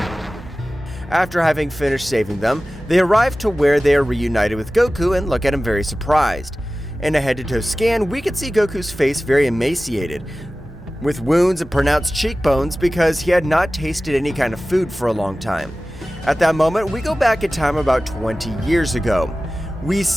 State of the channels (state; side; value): normal; both; correlation 0.96